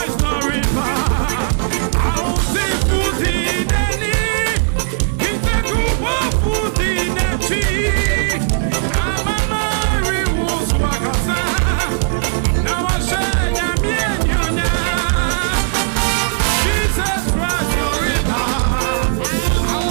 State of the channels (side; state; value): left; silent; digital silence